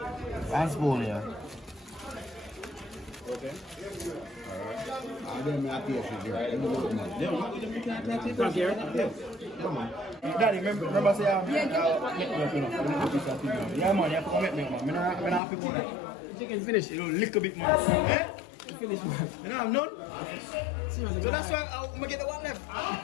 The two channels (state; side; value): drops out; right; at 15.4 s